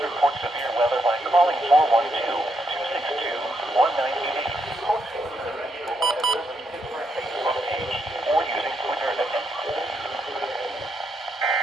report severe weather by calling 412-262-1988. Or using Twitter at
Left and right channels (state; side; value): normal; both; correlation 0.78